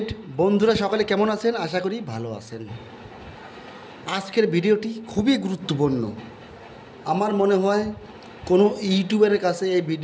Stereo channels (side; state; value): both; identical; correlation 1.00